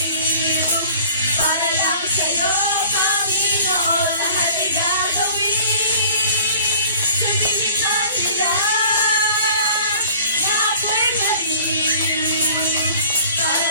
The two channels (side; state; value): both; inverted; correlation -0.48